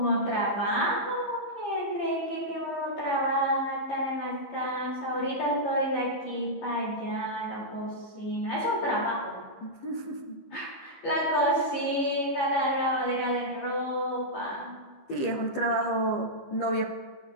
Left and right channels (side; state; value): right; late; 15 ms